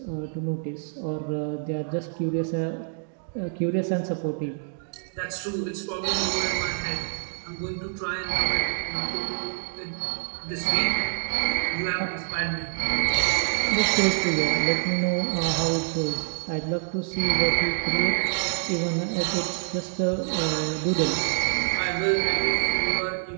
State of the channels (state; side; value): silent; left; digital silence